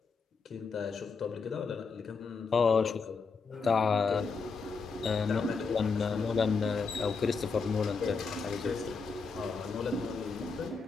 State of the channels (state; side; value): quieter; right; 4.8 dB